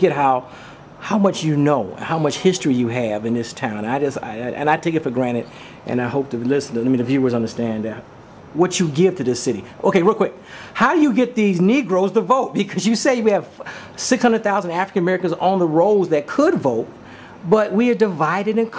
how much you know, how much history you have in this town. I take it for granted, and I hope the listeners, the viewers understand that what you give to this city. Okay, real quick. How do you get these Negroes to vote? Because you say we have 600,000 African Americans on the rolls that could vote, but we are divided and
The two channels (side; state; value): both; identical; correlation 1.00